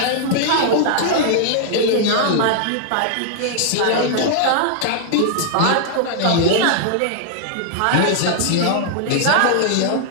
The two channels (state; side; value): different; both; correlation -0.01